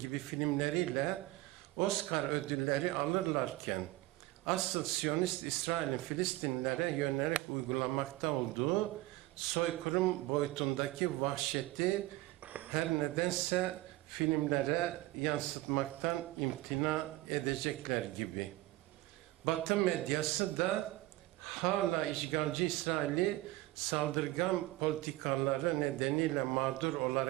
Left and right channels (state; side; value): quieter; left; 18.1 dB